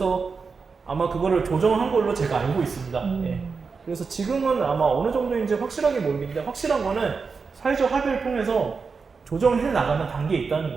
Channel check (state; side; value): quieter; left; 5.0 dB